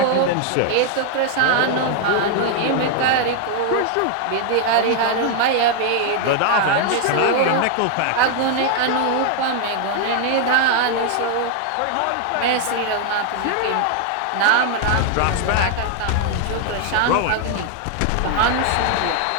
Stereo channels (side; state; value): both; different; correlation 0.00